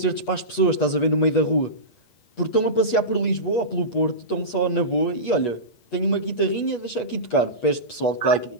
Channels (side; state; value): right; late; 8.3 ms